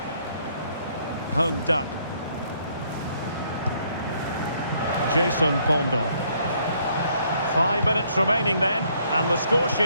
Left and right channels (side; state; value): both; inverted; correlation -0.67